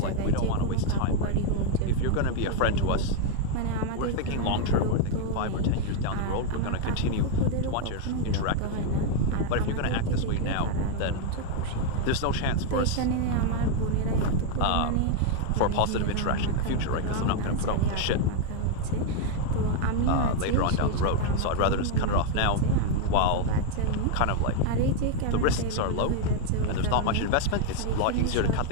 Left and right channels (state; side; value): different; both; correlation 0.01